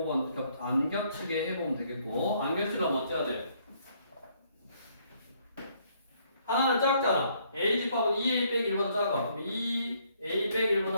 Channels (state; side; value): inverted; both; correlation -0.67